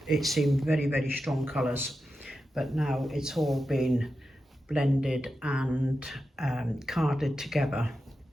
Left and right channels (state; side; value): normal; both; correlation 0.90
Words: it seemed very, very strong colours, but now it's all been blended and carded together.